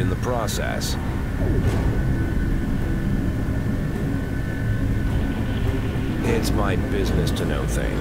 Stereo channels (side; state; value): both; identical; correlation 1.00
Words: the process. It's my business to know